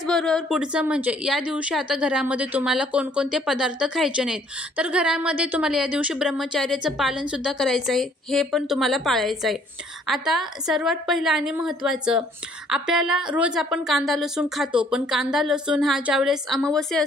पुढचं म्हणजे या दिवशी आता घरामध्ये तुम्हाला कोणकोणते पदार्थ खायचे नाहीत, तर घरामध्ये तुम्हाला या दिवशी ब्रह्मचर्याचं पालन सुद्धा करायचं आहे, हे पण तुम्हाला पाळायचं आहे। आता सर्वात पहिलं आणि महत्त्वाचं, आपल्याला रोज आपण कांदा लसूण खातो, पण कांदा लसूण हा ज्यावेळेस अमावस्या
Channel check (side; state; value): both; normal; correlation 0.61